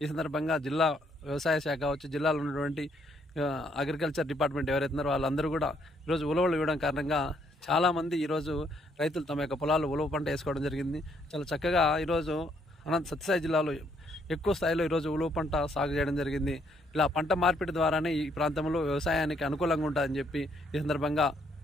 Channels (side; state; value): both; normal; correlation 0.70